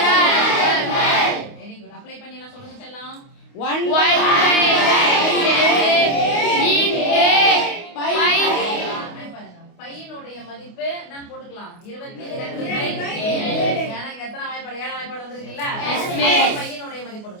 அலகுகள். Very good. அப்ளை பண்ணி எல்லாம் சொல்லுங்க செல்லம். 1 by பையனுடைய மதிப்பு நான் போட்டுக்கலாம் 22/7. ஏன்னா எத்தனை வாய்ப்பாடு? 7ஆம் வாய்ப்பாடு வந்திருக்குல்ல? பையனுடைய மதிப்பு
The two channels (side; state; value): right; late; 28 ms